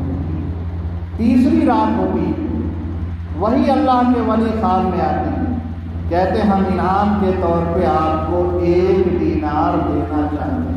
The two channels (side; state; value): both; identical; correlation 1.00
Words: تیسری رات ہوگی، وہی اللہ کے ولی خواب میں آتے ہیں، کہتے ہم انعام کے طور پہ آپ کو 1 دینار دینا چاہتے